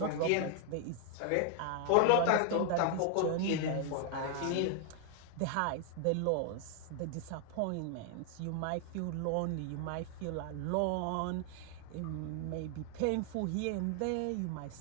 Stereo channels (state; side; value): different; both; correlation 0.00